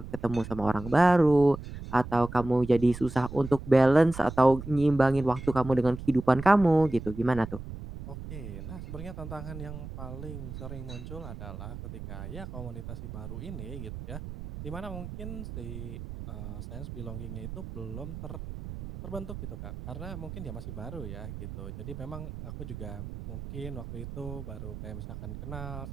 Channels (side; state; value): right; noise; rumble, 10 dB below the sound